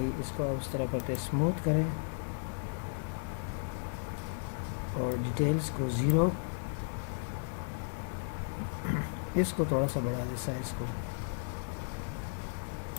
इसको अब उस तरह करते हैं, स्मूथ करें, और डिटेल्स को 0, इसको थोड़ा सा बढ़ा दे साइज को।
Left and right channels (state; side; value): silent; right; digital silence